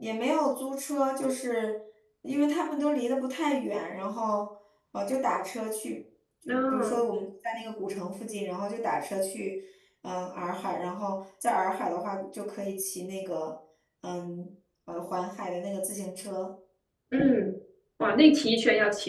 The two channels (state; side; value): identical; both; correlation 1.00